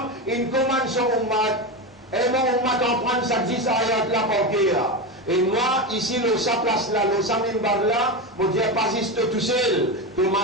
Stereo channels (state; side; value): normal; both; correlation 0.17